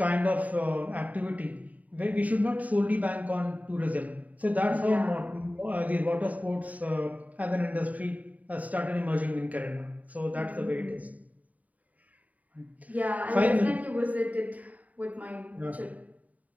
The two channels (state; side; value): late; left; 0.072 ms